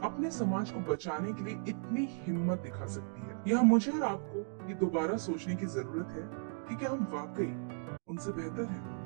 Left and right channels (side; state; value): left; silent; 54 dB below the other